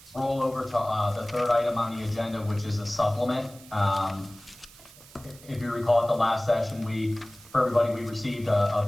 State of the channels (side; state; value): right; noise; hiss, 21 dB below the sound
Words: roll over to the third item on the agenda, which is a supplement. If you recall at the last session, for everybody, we received a